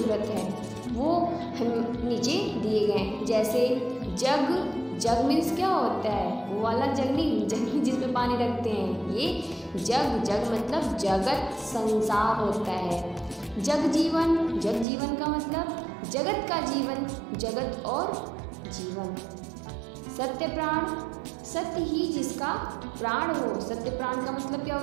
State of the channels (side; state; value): left; drops out; at 14.9 s